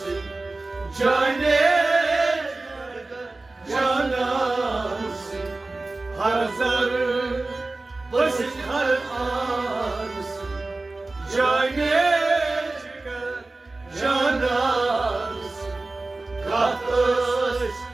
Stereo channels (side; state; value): left; quieter; 3.2 dB